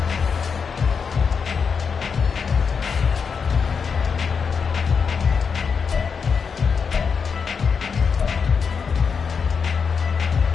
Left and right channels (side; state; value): right; quieter; 5.9 dB